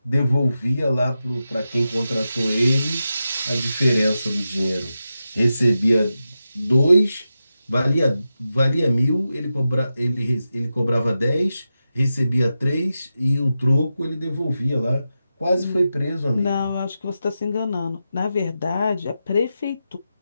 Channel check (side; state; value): both; inverted; correlation -0.90